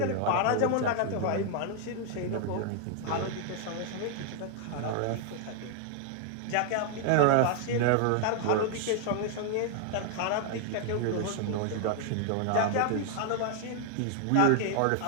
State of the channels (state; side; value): different; both; correlation 0.00